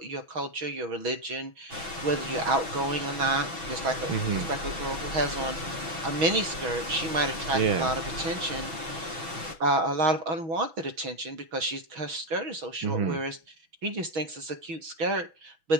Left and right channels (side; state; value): left; late; 6.1 ms